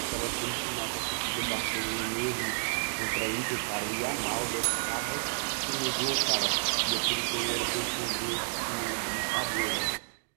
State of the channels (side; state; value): left; silent; digital silence